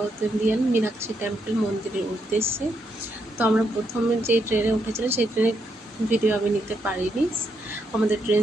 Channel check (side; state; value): both; normal; correlation 0.79